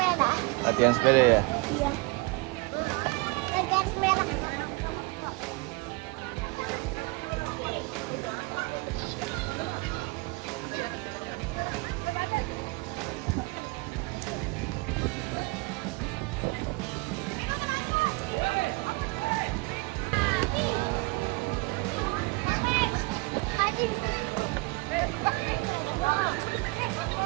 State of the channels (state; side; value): quieter; left; 26.2 dB